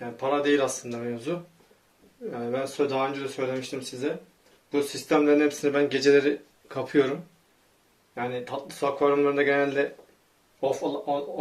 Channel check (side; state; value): both; identical; correlation 1.00